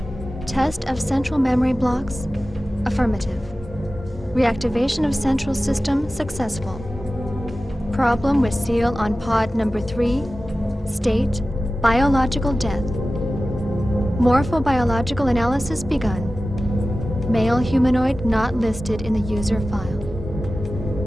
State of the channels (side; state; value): both; normal; correlation 0.95